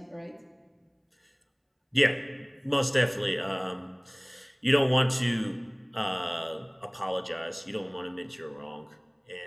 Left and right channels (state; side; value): identical; both; correlation 1.00